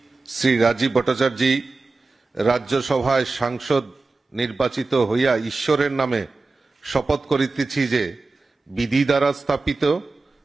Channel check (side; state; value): left; quieter; 3.7 dB